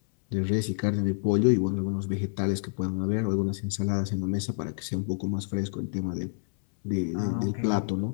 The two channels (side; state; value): right; silent; 59 dB below the other